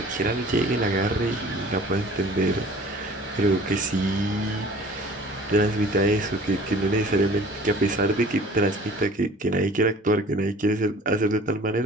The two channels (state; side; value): normal; both; correlation 0.47